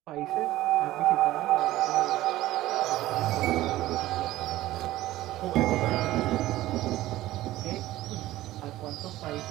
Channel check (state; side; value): quieter; left; 15.9 dB